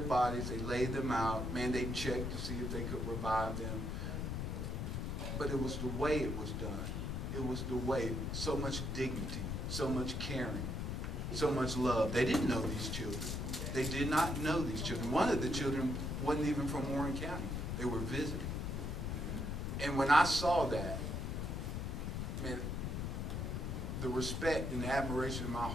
bodies, they laid them out, man, they checked to see if they could revive them. But it was the way it was done. It was the way, so much dignity, so much caring, so much love. They didn't know these children. They did not know these children. One of the children wasn't even from Warren County. They were visiting. And when I saw that, man, the respect and the admiration in my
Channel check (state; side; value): noise; left; rumble, 2 dB below the sound